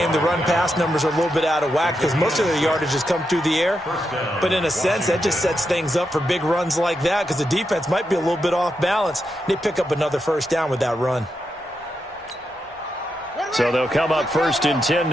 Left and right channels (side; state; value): both; normal; correlation 0.85